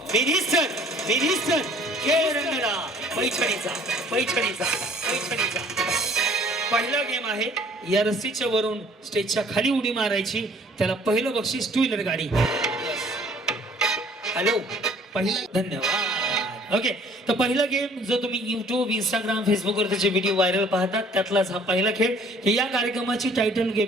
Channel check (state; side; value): normal; both; correlation 0.55